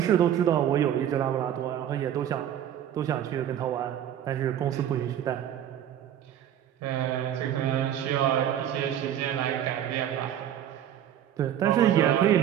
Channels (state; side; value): quieter; left; 10.4 dB